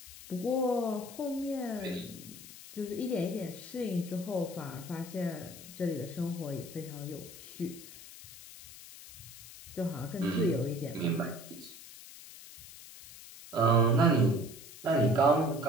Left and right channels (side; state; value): left; noise; hiss, 16 dB below the sound